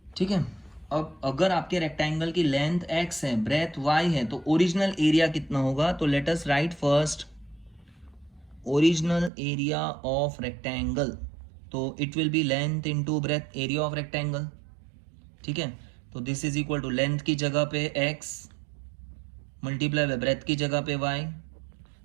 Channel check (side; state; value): left; drops out; at 9.3 s